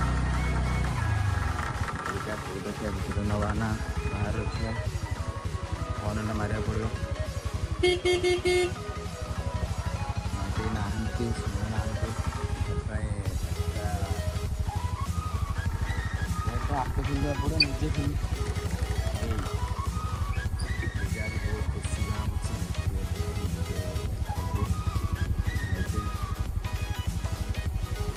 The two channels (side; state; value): both; identical; correlation 1.00